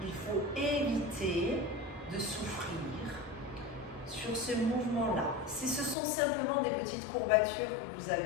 Il faut éviter de souffrir sur ce mouvement-là. Si ce sont simplement des petites courbatures que vous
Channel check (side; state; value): right; drops out; at 6.0 s